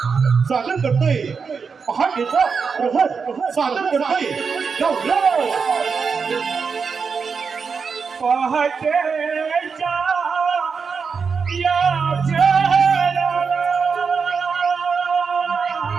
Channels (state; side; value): quieter; left; 5.5 dB